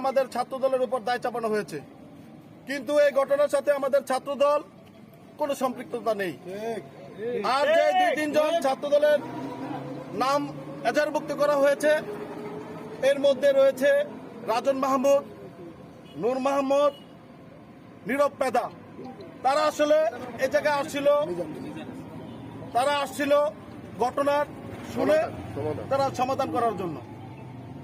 ছাত্রদলের উপর দায় চাপানো হয়েছে, কিন্তু এই ঘটনার সাথে আমাদের ছাত্রদল কোনো সম্পৃক্ততা নেই। আর যে 2-3 জন ছাত্রদলের নাম এজাহারভুক্ত করা হয়েছে এর মধ্যে রয়েছে রাজন মাহমুদ, নূর মাহমুদ, নীরব পেদা। তারা আসলে এই জায়গায় আসছিল ঘটনার শুনে তারা সমাধান করার জন্য,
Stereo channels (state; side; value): identical; both; correlation 1.00